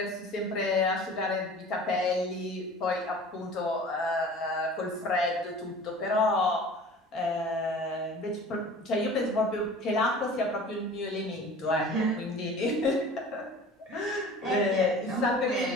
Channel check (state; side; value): normal; both; correlation 0.43